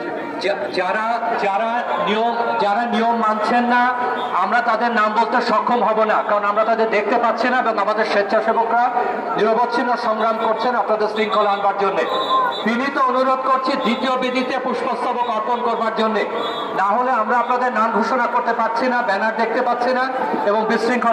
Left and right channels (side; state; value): both; identical; correlation 1.00